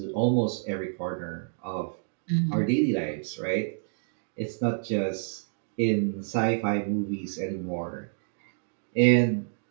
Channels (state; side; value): silent; left; digital silence